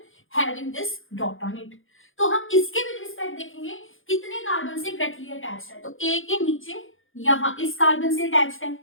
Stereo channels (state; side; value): late; right; 0.58 ms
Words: having this dot on it. तो हम इसके विद रिस्पेक्ट देखेंगे कितने कार्बन से डायरेक्टली अटैच्ड है। तो ए के नीचे यहाँ इस कार्बन से अटैच्ड है,